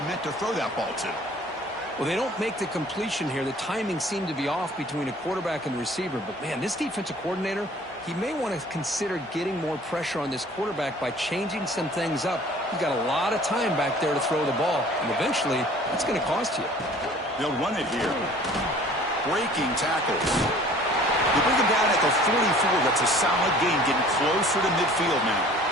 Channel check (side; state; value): both; normal; correlation 0.50